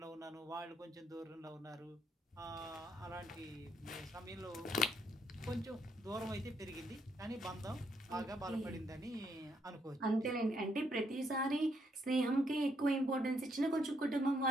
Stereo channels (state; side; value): normal; both; correlation 0.74